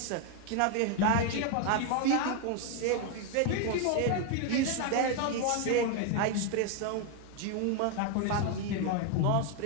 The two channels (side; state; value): both; different; correlation 0.01